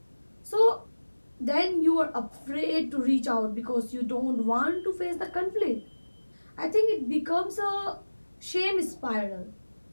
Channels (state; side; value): inverted; both; correlation -1.00